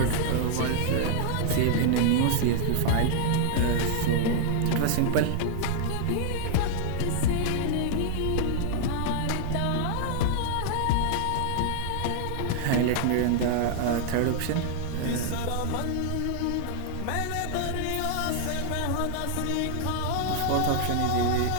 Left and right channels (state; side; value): different; both; correlation -0.01